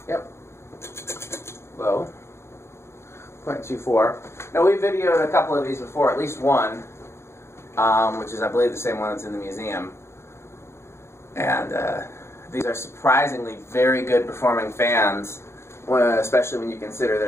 Yep. Low. 0.24. Now, we videoed a couple of these before, at least one, which is, I believe, the same one that's in the museum. And these are surprisingly very good performing fans, especially when you consider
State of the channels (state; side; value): late; right; 0.13 ms